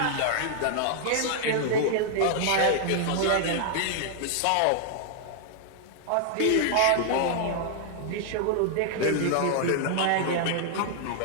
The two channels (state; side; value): different; both; correlation -0.01